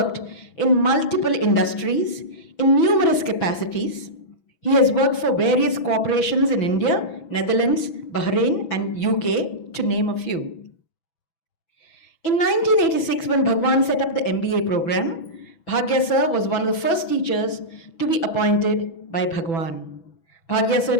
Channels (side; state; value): right; late; 6.0 ms